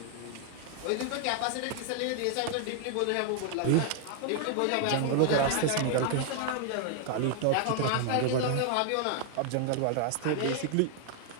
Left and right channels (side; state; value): both; different; correlation 0.00